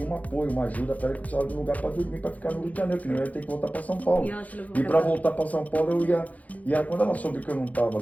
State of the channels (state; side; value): late; right; 0.074 ms